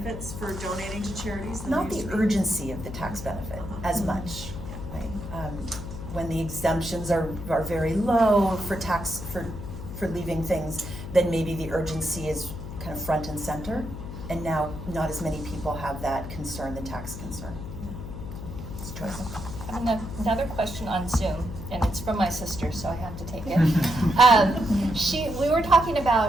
for donating to charities? Not the urgency of the tax benefit as much. Right? When the exemptions are very low for tax for leaving things, then maybe the urgency is kind of front and center. And now not as many people have that concern, the tax concern. It's a choice. I have another question on Zoom, and it's from my sister, so I have to take it. We were talking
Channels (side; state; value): left; noise; hum, 9 dB below the sound